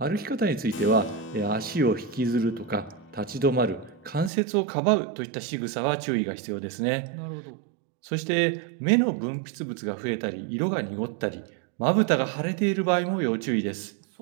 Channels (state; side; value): drops out; left; at 4.3 s